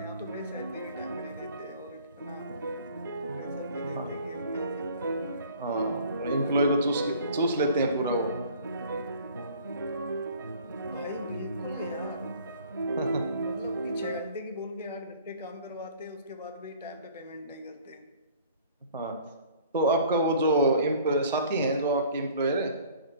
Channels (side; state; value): both; inverted; correlation -0.51